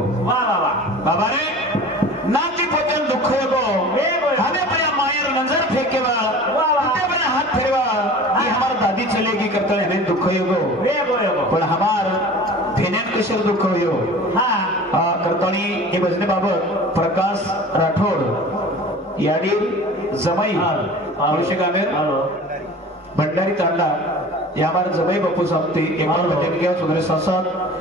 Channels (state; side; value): normal; both; correlation 0.40